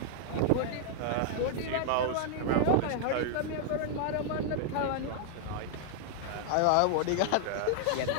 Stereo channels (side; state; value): both; different; correlation 0.00